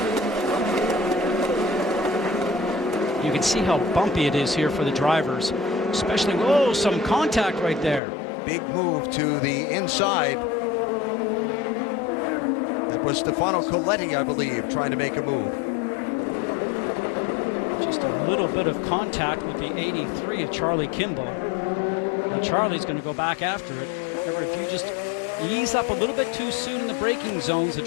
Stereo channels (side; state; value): right; drops out; at 8.0 s